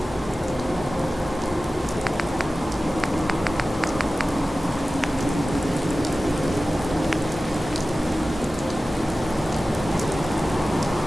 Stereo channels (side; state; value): both; normal; correlation 0.96